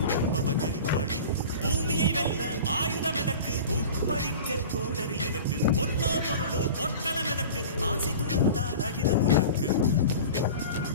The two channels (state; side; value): inverted; both; correlation -0.37